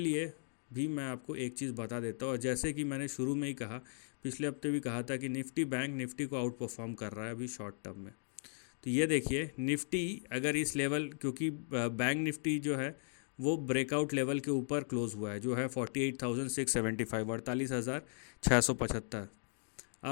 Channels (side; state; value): right; silent; digital silence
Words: भी मैं आपको एक चीज़ बता देता हूँ। और जैसे कि मैंने शुरू में ही कहा, पिछले हफ्ते भी कहा था कि निफ्टी बैंक निफ्टी को आउट परफॉर्म कर रहा है अभी शॉर्ट टर्म में। तो ये देखिए निफ्टी अगर इस लेवल, क्योंकि बैंक निफ्टी जो है वो ब्रेकआउट लेवल के ऊपर क्लोज हुआ है जो है 48,675, 48,675।